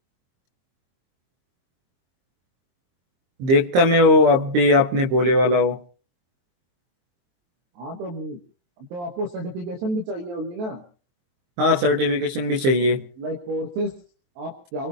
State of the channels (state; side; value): late; left; 23 ms